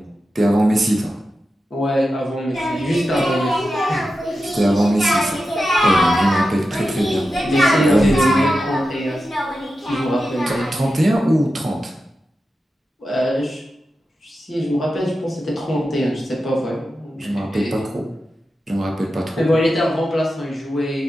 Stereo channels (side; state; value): both; normal; correlation 0.91